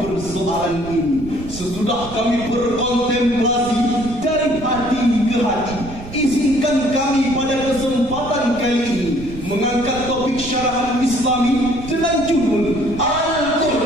persoalan ini, sesudah kami berkontemplasi dari hati ke hati, izinkan kami pada kesempatan kali ini mengangkat topik syarahan Islami dengan judul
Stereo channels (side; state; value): right; noise; rumble, 13 dB below the sound